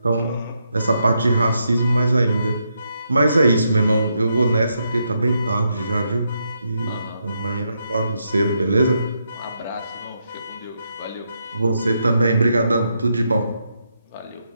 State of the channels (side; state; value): both; inverted; correlation -0.80